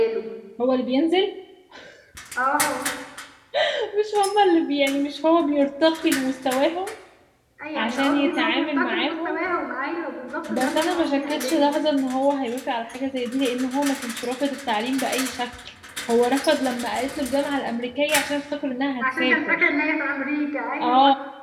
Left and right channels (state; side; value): identical; both; correlation 1.00